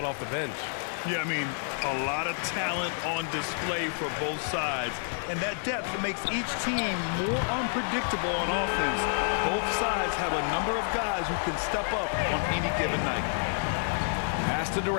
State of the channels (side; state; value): right; silent; digital silence